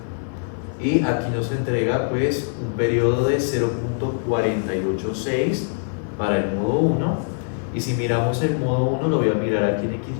y aquí nos entrega pues un periodo de 0.486 para el modo 1. Y si miramos el modo 1, lo voy a mirar aquí en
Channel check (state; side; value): silent; right; 64 dB below the other